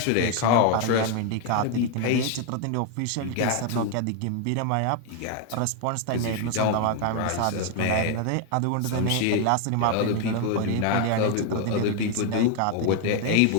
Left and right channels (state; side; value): different; both; correlation 0.01